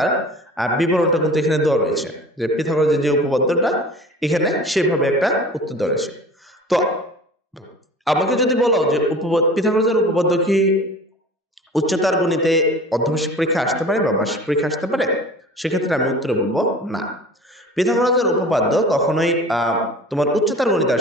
বিবরণটা কিন্তু এখানে দেওয়া রয়েছে, যে পিথাগোরাসের যে উপপাদ্যটা এখানে সেভাবে একটা উত্তর দেওয়া রয়েছে। তো আমাকে যদি বলো যে পিথাগোরাসের উপপাদ্য কি উচ্চতর গণিতে অর্ধবার্ষিক পরীক্ষা আসতে পারে বা বার্ষিক পরীক্ষা আসতে পারে, সেক্ষেত্রে আমি উত্তরে বলবো না। পিথাগোরাসের উপপাদ্য কখনোই তোমার উচ্চতর গণিতে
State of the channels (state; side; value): normal; both; correlation 0.41